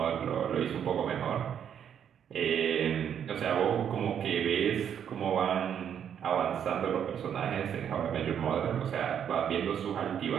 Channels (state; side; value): quieter; left; 8.7 dB